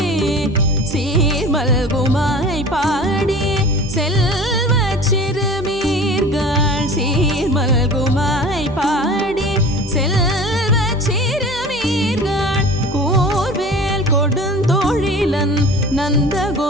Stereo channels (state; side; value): normal; both; correlation 0.41